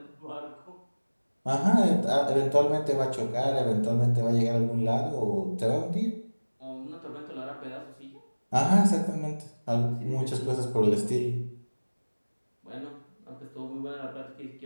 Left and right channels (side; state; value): both; inverted; correlation -1.00